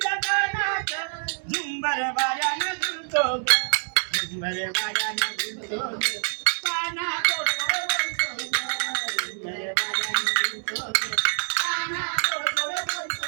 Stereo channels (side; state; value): left; silent; 61 dB below the other